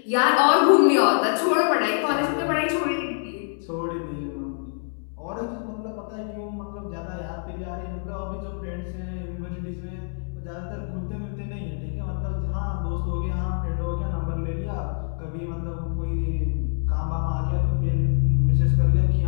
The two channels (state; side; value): silent; right; 62 dB below the other